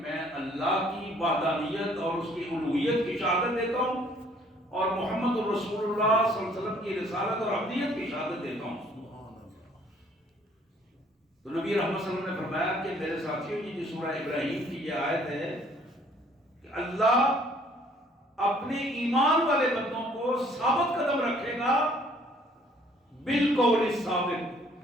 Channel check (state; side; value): normal; both; correlation 0.60